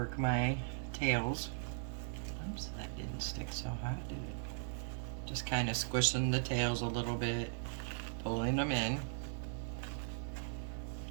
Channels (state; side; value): silent; left; digital silence